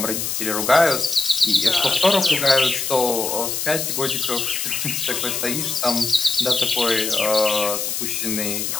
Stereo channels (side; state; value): left; noise; hiss, 2 dB below the sound